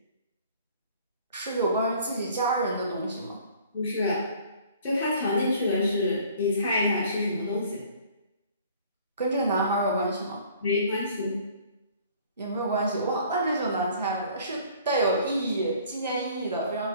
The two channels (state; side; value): inverted; both; correlation -0.53